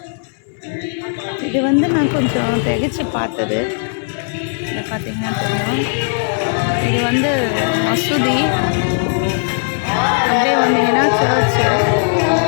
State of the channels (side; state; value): right; silent; digital silence